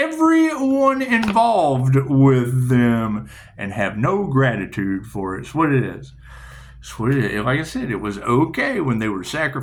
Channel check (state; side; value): identical; both; correlation 1.00